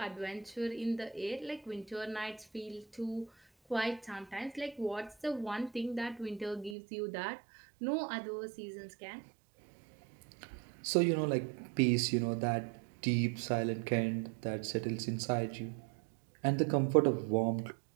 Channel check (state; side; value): drops out; left; at 6.8 s